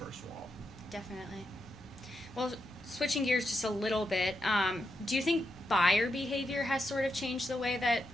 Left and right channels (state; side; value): normal; both; correlation 0.84